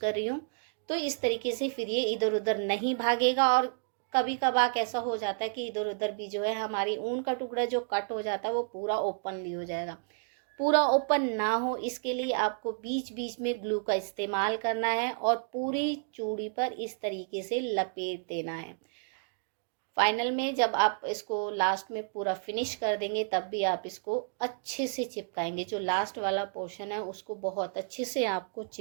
रही हूँ। तो इस तरीके से फिर ये इधर उधर नहीं भागेगा। और कभी कभार ऐसा हो जाता है कि इधर उधर भी जो है हमारी ऊन का टुकड़ा जो कट हो जाता है वो पूरा ओपनली हो जाएगा। पूरा ओपन ना हो इसके लिए आपको बीच बीच में ग्लू का इस्तेमाल करना है और पूरी चूड़ी पर इस तरीके से लपेट देना है। फाइनल में जब आप इसको लास्ट में पूरा फिनिश कर देंगे तब भी आप इसको अच्छे से चिपकाएंगे। जो लास्ट वाला पोर्शन है उसको बहुत अच्छे से आपको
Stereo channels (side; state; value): left; silent; digital silence